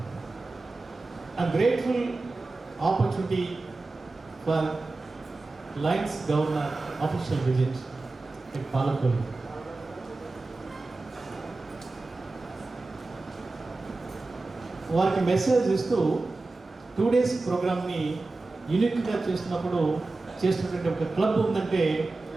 I'm grateful opportunity for Lions Governor official visit at Palakollu. వారికి మెసేజ్ ఇస్తూ 2 days ప్రోగ్రామ్ని యూనిక్గా చేస్తున్నప్పుడు చేస్తున్నటువంటి ఒక క్లబ్ ఉందంటే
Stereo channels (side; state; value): left; quieter; 3.4 dB